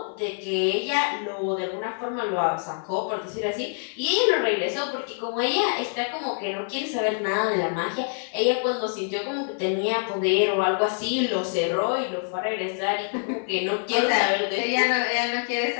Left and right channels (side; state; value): right; silent; 61 dB below the other